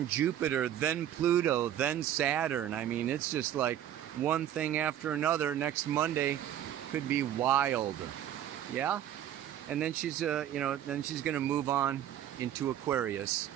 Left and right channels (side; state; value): left; quieter; 11.1 dB